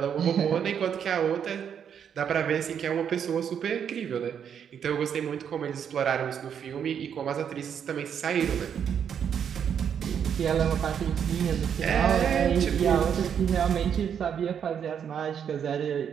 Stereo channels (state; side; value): quieter; left; 8.1 dB